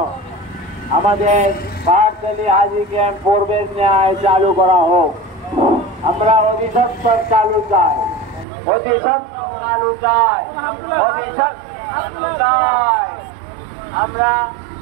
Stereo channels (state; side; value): drops out; left; at 8.5 s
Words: আমাদের পাহাড়তলী হাজি ক্যাম্প পূর্বের ন্যায় চালু করা হোক। আমরা অধিসত্তর চালু চাই, আমরা